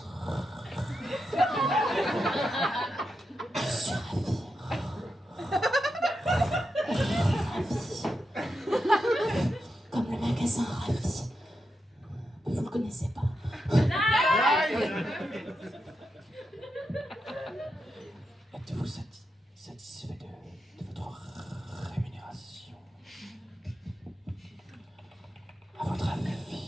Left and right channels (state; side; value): normal; both; correlation 0.87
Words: Je suis ravie. Ravie. Comme le magasin Ravi. Vous le connaissez pas. Êtes-vous satisfait de votre rémunération? À votre